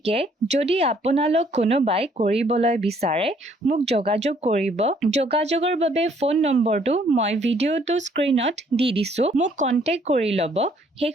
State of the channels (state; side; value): normal; both; correlation 0.64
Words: যদি আপোনালোক কোনোবাই কৰিবলৈ বিচাৰে মোক যোগাযোগ কৰিব। যোগাযোগৰ বাবে ফোন নম্বৰটো মই ভিডিঅ'টো স্ক্ৰীনত দি দিছো, মোক কন্টেক্ট কৰি ল'ব।